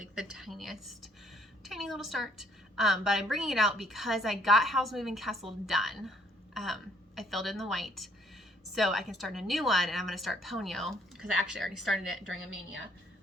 the tiny little start. But I'm bringing it out because I got Howl's Moving Castle done. I filled in the white, so I can start a new one, and I'm going to start Ponyo because I actually already started it during a mania.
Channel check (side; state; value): both; normal; correlation 0.65